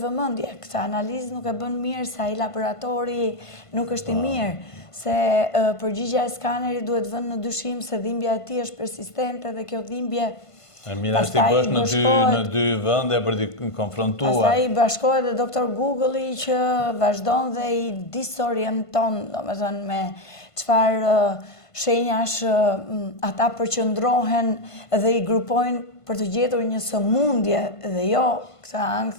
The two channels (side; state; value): right; late; 1.5 ms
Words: vëmendje. Këtë analizë nuk e bën mirë, se ai laboratori nuk është i mirë, se përgjigja e skanerit duhet vënë në dyshim se dhimbja e tij është persistente dhe kjo dhimbje Mirë është t'i bësh në dy vende për t'i konfrontuar. Pastaj i bashkohet dhe doktor Google-i që vazhdon dhe i disorienton, domethënë me çfarë shenjash ata përqendrohen dhe i grupojnë për të gjetur një sëmundje dhe jo këtë